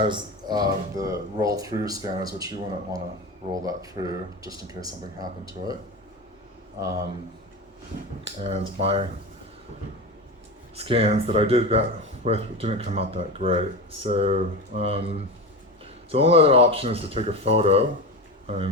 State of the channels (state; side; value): normal; both; correlation 0.23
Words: the roll-through scanners, which you wouldn't want to roll that through just in case something happened to it. And my scans that I did that with didn't come out that great. So, so the only other option is to take a photo,